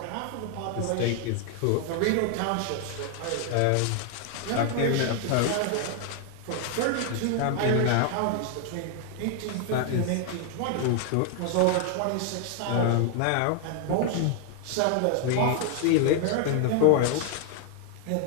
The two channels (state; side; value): different; both; correlation 0.00